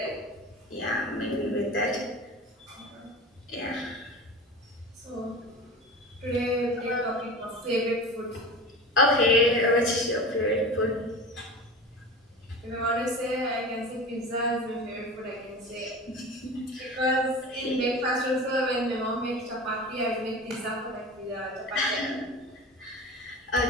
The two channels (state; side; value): normal; both; correlation 0.33